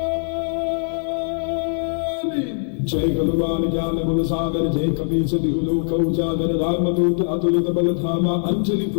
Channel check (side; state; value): right; silent; 55 dB below the other